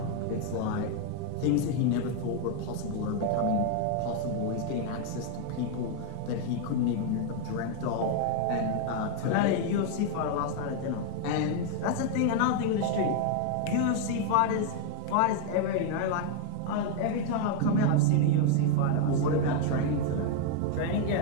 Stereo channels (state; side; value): different; both; correlation 0.00